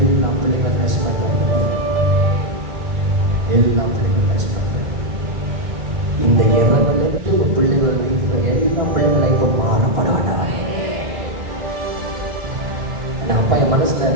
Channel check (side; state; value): left; late; 2.1 ms